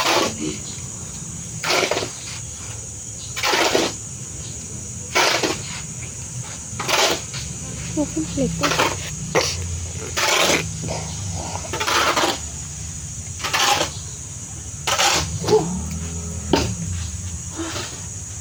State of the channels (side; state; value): both; identical; correlation 1.00